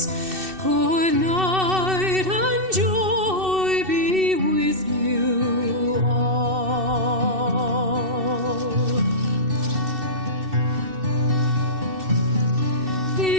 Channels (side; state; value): left; late; 2.7 ms